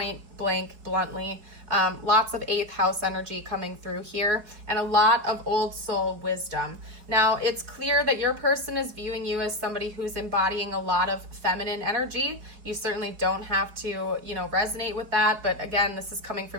blank bluntly. Lots of 8th house energy coming through here, and a lot of old soul wisdom. Now, it's clear that your person is viewing you as somebody who's embodying a lot of feminine energy. You certainly don't have to, resonate with that, but again, this is coming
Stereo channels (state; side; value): late; left; 4.8 ms